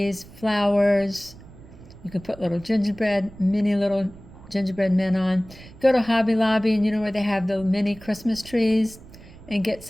flowers. You can put little gingerbread, mini little gingerbread men on. Go to Hobby Lobby and you know where they have the mini Christmas trees, and get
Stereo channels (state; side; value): noise; right; rumble, 19 dB below the sound